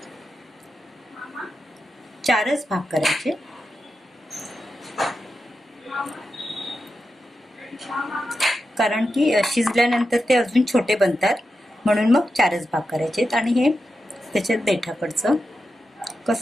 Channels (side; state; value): both; normal; correlation 0.89